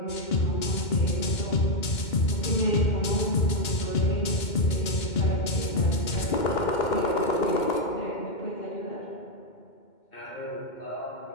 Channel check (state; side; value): late; right; 2.2 ms